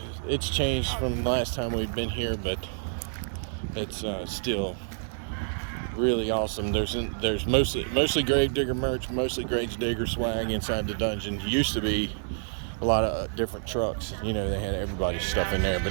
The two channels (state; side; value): silent; left; digital silence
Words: It's changed from the last time we'd been here, but it's still really awesome. There's mostly grave digger merch, mostly grave digger swag inside the dungeon. Used to be a lot of different trucks. You know, they had everybody's stuff in there,